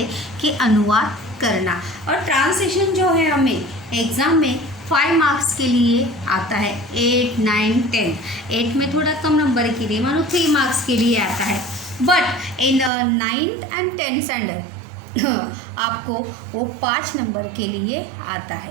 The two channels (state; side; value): drops out; left; at 12.9 s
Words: कि अनुवाद करना. और ट्रांसलेशन जो है हमें एग्ज़ाम में 5 मार्क्स के लिए आता है. 8, 9, 10. 8 में थोड़ा कम नंबर के लिए, मानो 3 मार्क्स के लिए आता है. But in 9th and 10th standard आपको वो 5 नंबर के लिए आता